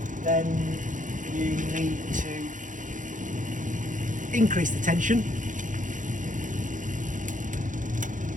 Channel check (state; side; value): late; left; 0.37 ms